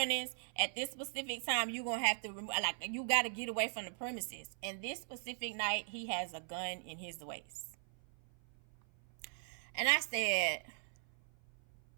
At this specific time, you're going to have to, you got to get away from the premises. And this specific night, he has a gun in his waist. And I said,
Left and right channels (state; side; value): silent; left; 51 dB below the other